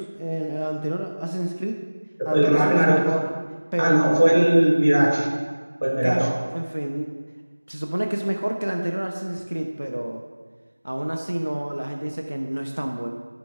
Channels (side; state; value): both; inverted; correlation -1.00